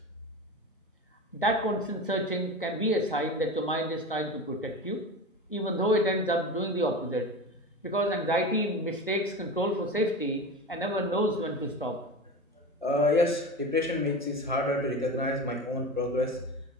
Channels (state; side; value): normal; both; correlation 0.28